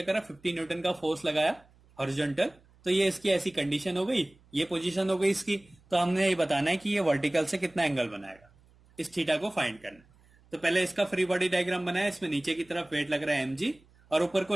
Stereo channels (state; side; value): noise; right; hum, 30 dB below the sound